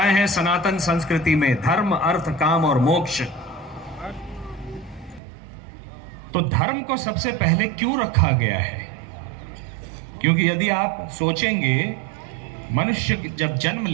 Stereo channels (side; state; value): left; drops out; at 5.2 s